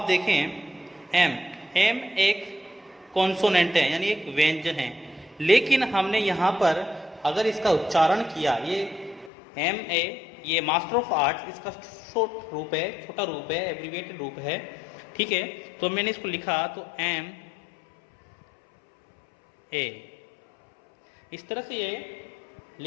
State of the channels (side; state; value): right; drops out; at 9.3 s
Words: देखें, एम एक कॉन्सोनेंट है यानी एक व्यंजन है, लेकिन हमने यहाँ पर अगर इसका उच्चारण किया, ये एम ए, ये मास्टर ऑफ आर्ट्स, इसका छोटा रूप है, एब्रीविएटेड रूप है, ठीक है। तो मैंने इसको लिखा तो एम ए, इस तरह से ये